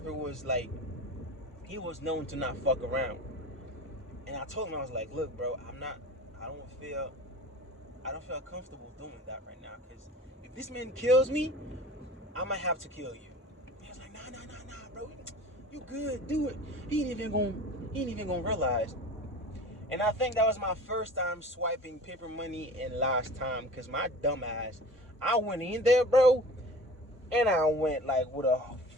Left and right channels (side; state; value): both; normal; correlation 0.40